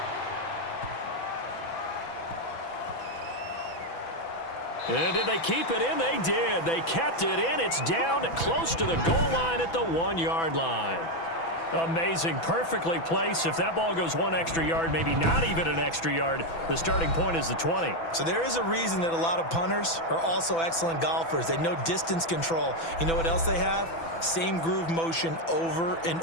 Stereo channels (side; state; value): right; late; 6.0 ms